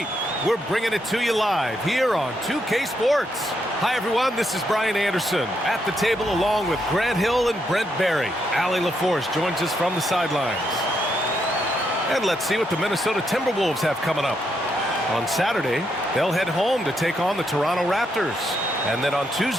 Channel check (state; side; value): normal; both; correlation 0.78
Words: We're bringing it to you live here on 2K Sports. Hi, everyone. This is Brian Anderson at the table along with Grant Hill and Brent Barry. Allie LaForce joins us from the sidelines. And let's see what the Minnesota Timberwolves have coming up. On Saturday, they'll head home to take on the Toronto Raptors. And then on